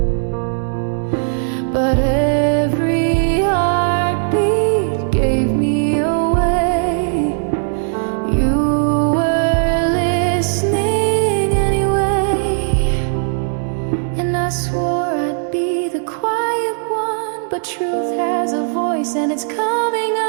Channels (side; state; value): left; silent; digital silence